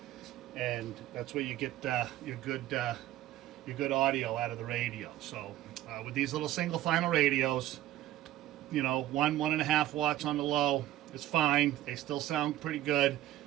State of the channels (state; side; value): quieter; left; 14.3 dB